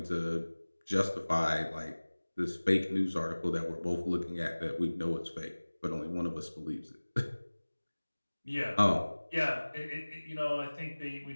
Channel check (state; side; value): inverted; both; correlation -1.00